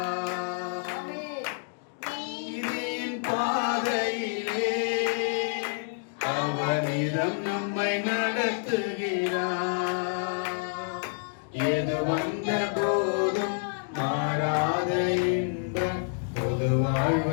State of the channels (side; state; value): right; silent; digital silence